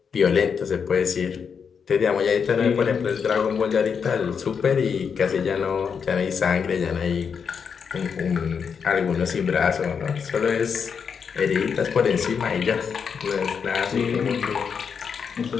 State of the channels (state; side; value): quieter; right; 6.5 dB